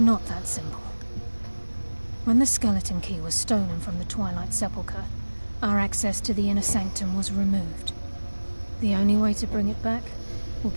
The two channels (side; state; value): both; inverted; correlation -1.00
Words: not that simple. When the skeleton key was stolen from the Twilight Sepulchre, our access to the inner sanctum was removed. The only way to bring it back will